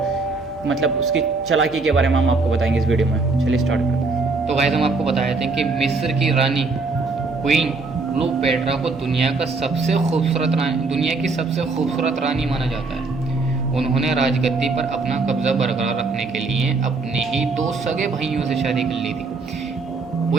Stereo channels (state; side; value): quieter; left; 3.9 dB